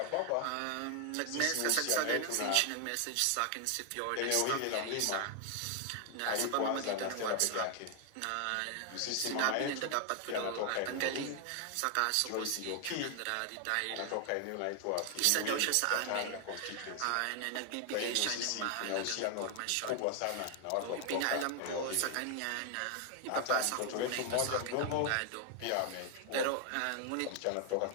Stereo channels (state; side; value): different; both; correlation 0.00